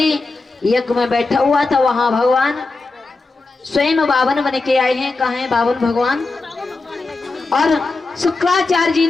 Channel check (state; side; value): quieter; right; 3.6 dB